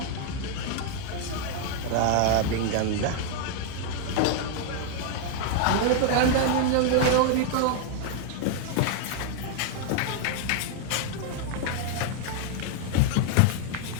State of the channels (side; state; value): both; different; correlation 0.00